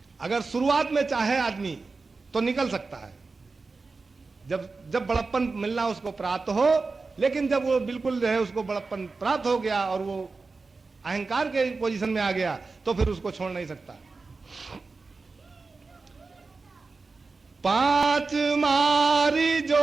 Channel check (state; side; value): quieter; left; 4.0 dB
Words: अगर शुरुआत में चाहे आदमी तो निकल सकता है, जब बड़प्पन मिलना उसको प्राप्त हो, लेकिन जब वो बिल्कुल जो है उसको बड़प्पन प्राप्त हो गया और वो अहंकार के पोजीशन में आ गया तो फिर उसको छोड़ नहीं सकता। 5 मारी